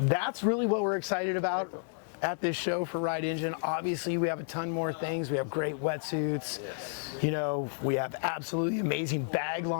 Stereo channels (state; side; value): silent; right; digital silence